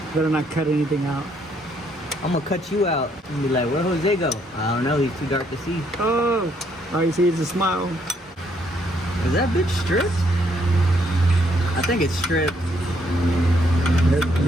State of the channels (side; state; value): both; normal; correlation 0.71